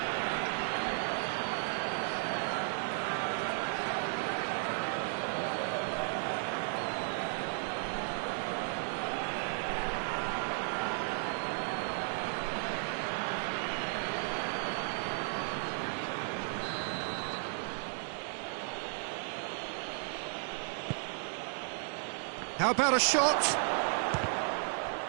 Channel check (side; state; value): left; silent; 55 dB below the other